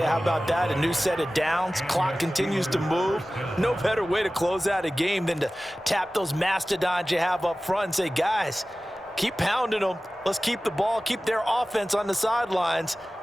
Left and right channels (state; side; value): normal; both; correlation 0.97